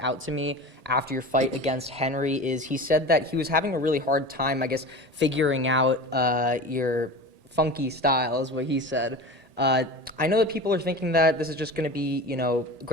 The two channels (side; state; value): left; late; 1.8 ms